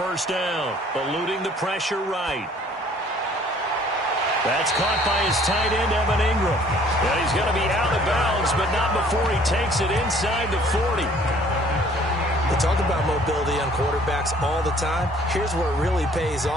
down, eluding the pressure right. That's caught by his tight end, Evan Ingram. And he's going to be out of bounds, but not before he takes it inside the 40. They talk about mobility on quarterbacks all the time. Here's where it really pays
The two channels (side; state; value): both; normal; correlation 0.57